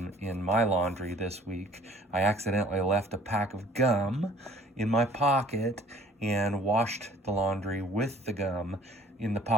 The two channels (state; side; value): normal; both; correlation 0.54